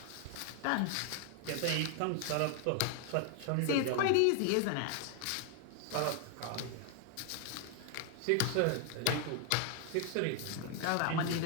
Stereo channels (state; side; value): different; both; correlation 0.00